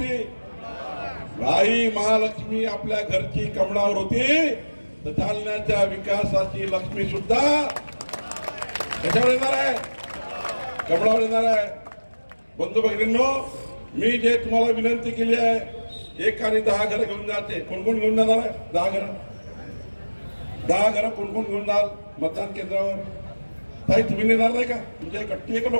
आई महालक्ष्मी आपल्या घरची कमळावर होती, तर जालन्याच्या विकासाची लक्ष्मी सुद्धा कशावर येणार आहे? कमळावर येणार आहे। बंधू भगिनींनो, मी जे तुम्हाला विनंती केली आहे, 1 आणि 10 घर घेऊन जाते। कोण कोण घेऊन जाणार आहे? 10 घर। 10 घर कोण कोण घेऊन जाल मतदान केंद्रावर? ताई तुम्ही नेणार नाही का? तुमच्या कट्टी आहे का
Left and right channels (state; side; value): inverted; both; correlation -1.00